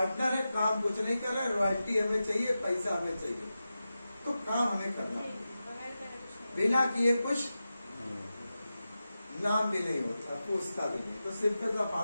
है, काम कुछ नहीं कर रहे, रॉयल्टी हमें चाहिए, पैसा हमें चाहिए, तो काम हमें करना पड़ेगा। बिना किए कुछ नाम भी नहीं होता, पूछता भी नहीं। तो सिंपल सा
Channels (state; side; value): inverted; both; correlation -0.92